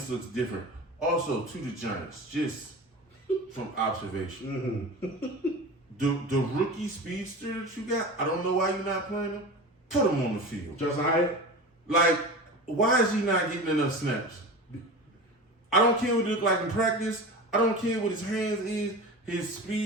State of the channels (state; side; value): normal; both; correlation 0.31